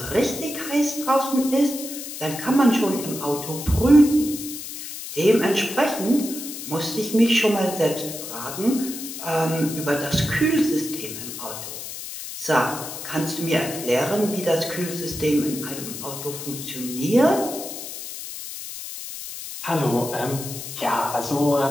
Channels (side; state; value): left; noise; hiss, 9 dB below the sound